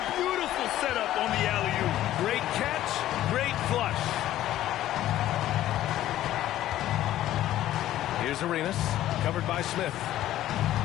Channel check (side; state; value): right; quieter; 13.5 dB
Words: Beautiful setup on the alley-oop. Great catch, great flush. Here's Arenas, covered by Smith.